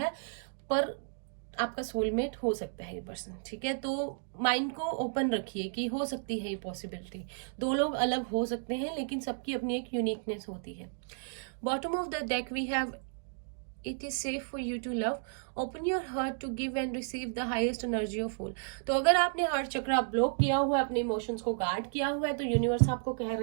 पर आपका सोलमेट हो सकता है ये पर्सन। ठीक है, तो माइंड को ओपन रखिए कि हो सकती है ये पॉसिबिलिटी। दो लोग अलग हो सकते हैं, लेकिन सबकी अपनी एक यूनिकनेस होती है। Bottom of the deck we have it is safe for you to love, open your heart to give and receive the highest energy of all। तो अगर आपने हार्ट चक्र ब्लॉक किया हुआ है, अपने इमोशंस को गार्ड किया हुआ है, तो यूनिवर्स आपको कह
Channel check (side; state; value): left; silent; digital silence